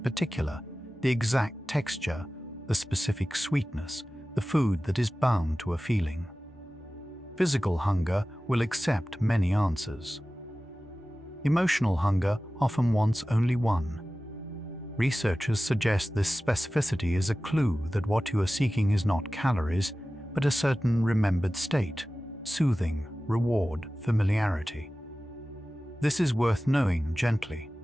the exact texture, the specific sweetness, the food that is bound to a feeling. Physical hunger will accept many answers. Emotional hunger often wants only one. Researchers suggest this specificity is a clue that what you are seeking is not calories, but a certain remembered state, soothing, reward, familiarity. This is worth knowing gently,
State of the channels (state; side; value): normal; both; correlation 0.96